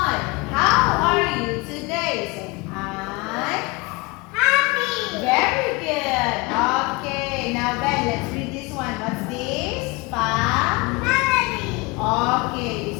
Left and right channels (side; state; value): right; quieter; 25.7 dB